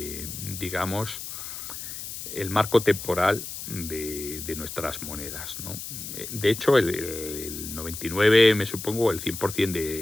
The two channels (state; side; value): noise; left; hiss, 8 dB below the sound